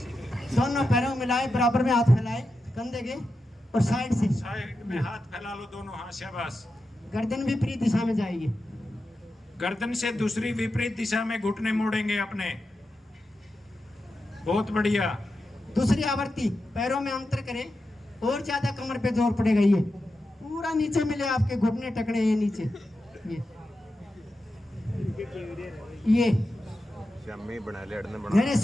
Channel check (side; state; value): both; normal; correlation 0.90